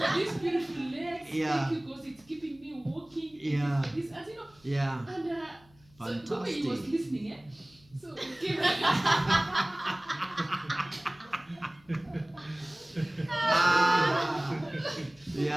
these beautiful legs. Yeah. Thank you because it's keeping me walking. Thank Yeah. you for this, as you know. Yeah. And so the way Fantastic. he was listening, eh? So it came.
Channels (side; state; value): left; noise; hum, 29 dB below the sound